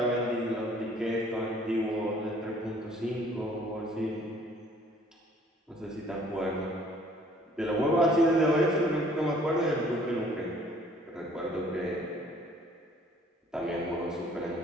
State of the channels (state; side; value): normal; both; correlation 0.57